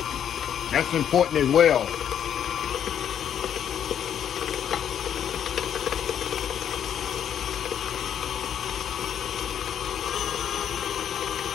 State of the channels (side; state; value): right; quieter; 9.2 dB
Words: That's important as well.